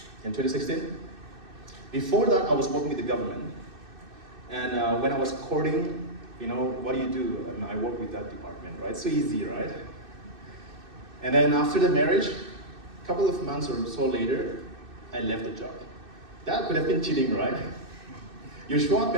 in 2016. Before that, I was working with the government. And when I was courting, what do you do? I work with that department, right? So easy, right? And then after the marriage, a couple of months or so later, I left the job. That could have been cheating, right? You show up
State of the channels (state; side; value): late; left; 2.6 ms